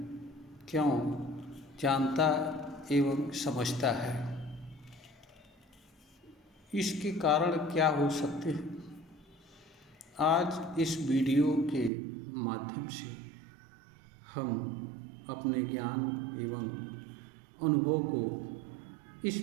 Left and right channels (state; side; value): drops out; left; at 11.9 s